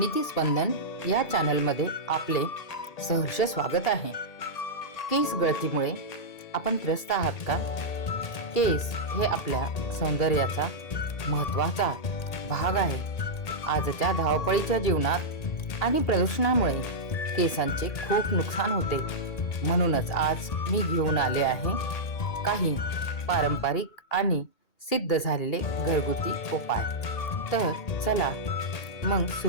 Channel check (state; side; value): late; right; 1.8 ms